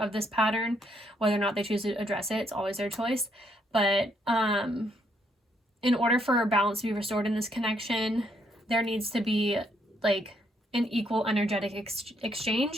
this pattern. Whether or not they choose to address it, it's always their choice. But in order for balance to be restored in this connection, there needs to be like an equal energetic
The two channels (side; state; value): both; normal; correlation 0.72